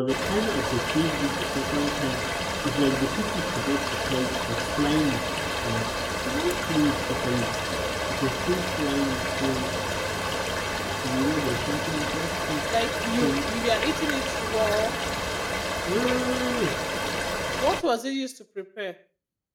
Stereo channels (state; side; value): identical; both; correlation 1.00